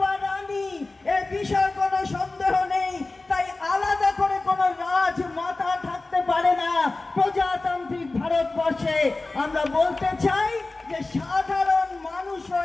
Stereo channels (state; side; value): quieter; right; 3.3 dB